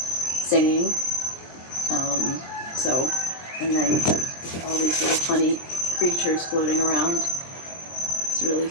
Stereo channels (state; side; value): late; right; 23 ms